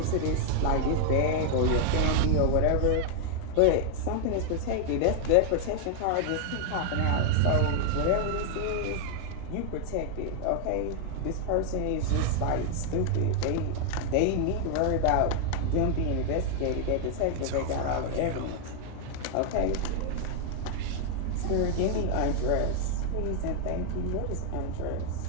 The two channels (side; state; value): both; different; correlation 0.00